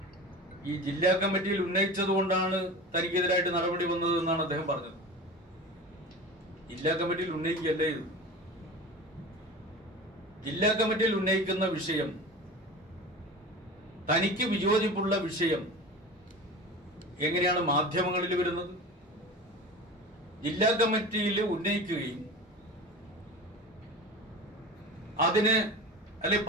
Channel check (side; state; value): both; normal; correlation 0.33